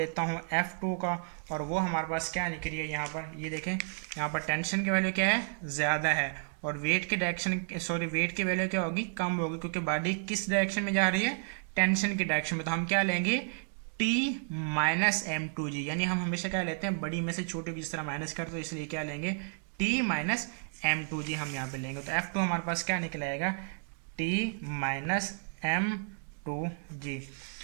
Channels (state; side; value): silent; left; digital silence